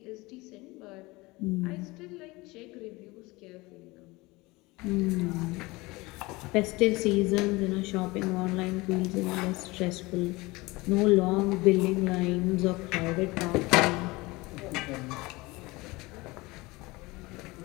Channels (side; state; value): right; quieter; 22.4 dB